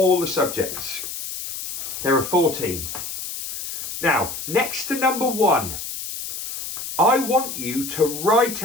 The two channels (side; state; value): left; noise; hiss, 7 dB below the sound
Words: the subjects. There are 14. Now, next to number 1, I want you to write